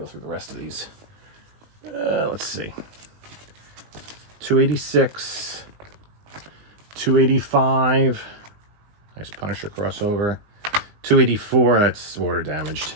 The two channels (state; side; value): late; left; 19 ms